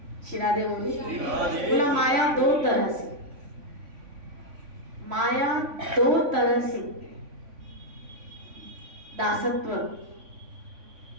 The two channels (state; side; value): late; left; 3.5 ms